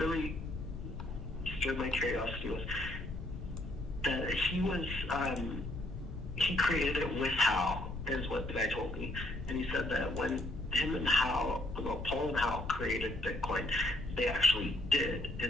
stirred my curiosity was that he created it with Hal, is what the guy told me, and he said that when him and Hal, Paul and Hal created Bitcoin, they actually did,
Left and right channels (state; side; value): noise; left; rumble, 9 dB below the sound